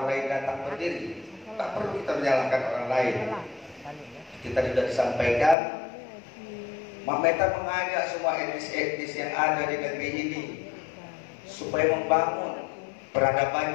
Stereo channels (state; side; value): drops out; right; at 5.6 s